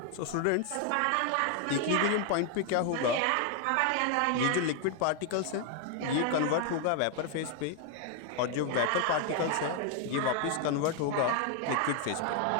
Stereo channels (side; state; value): both; different; correlation 0.00